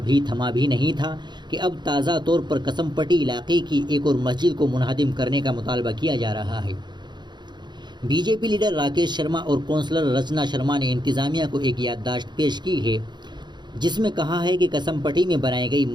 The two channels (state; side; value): late; left; 0.21 ms